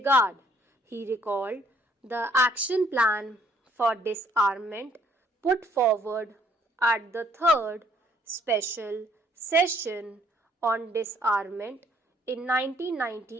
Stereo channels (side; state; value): both; normal; correlation 0.64